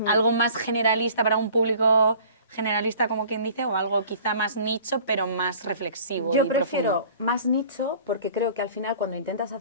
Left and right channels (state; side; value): inverted; both; correlation -0.48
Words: algo más generalista para un público generalista, como quien dice, o algo quizá más nicho, pero más reflexivo Yo y prefiero profundo. más nicho porque creo que al final cuando intentas